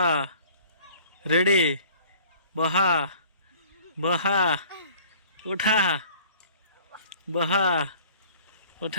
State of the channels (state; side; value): inverted; both; correlation -0.51